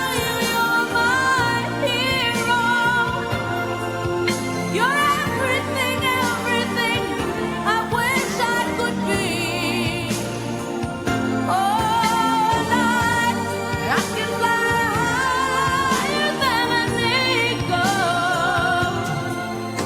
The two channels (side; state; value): both; identical; correlation 1.00